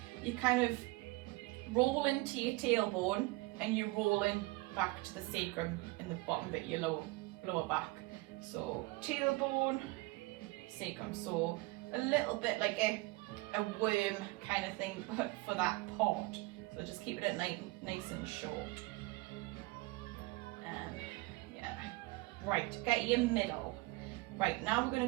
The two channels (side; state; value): left; quieter; 23.0 dB